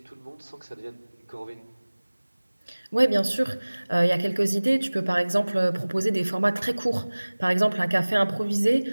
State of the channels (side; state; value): both; inverted; correlation -1.00